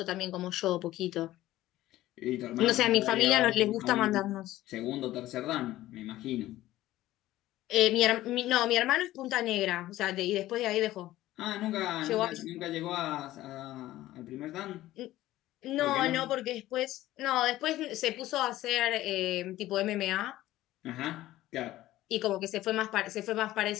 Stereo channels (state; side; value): quieter; right; 15.4 dB